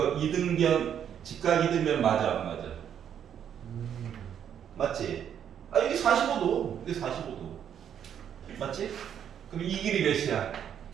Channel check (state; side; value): quieter; left; 9.0 dB